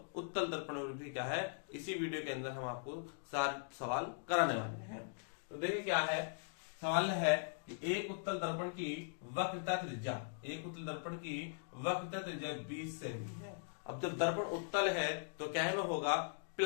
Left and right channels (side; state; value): right; silent; digital silence